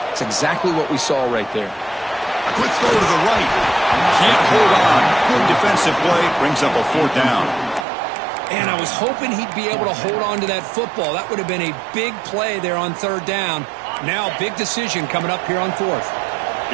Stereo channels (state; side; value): drops out; left; at 7.9 s